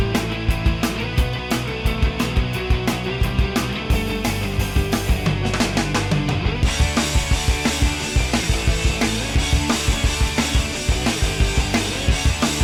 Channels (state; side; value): identical; both; correlation 1.00